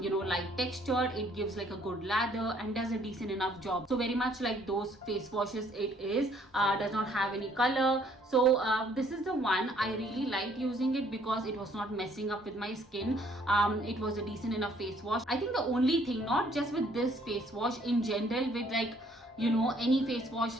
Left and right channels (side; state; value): both; normal; correlation 0.63